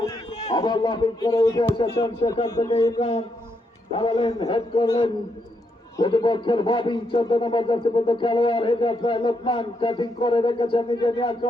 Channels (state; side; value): normal; both; correlation 0.79